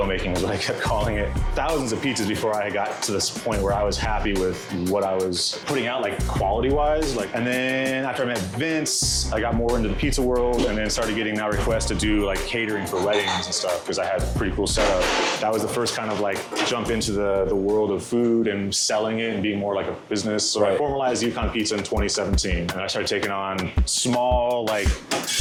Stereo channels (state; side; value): identical; both; correlation 1.00